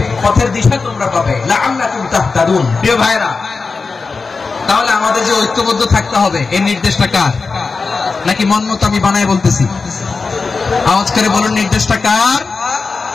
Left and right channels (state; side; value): quieter; right; 4.4 dB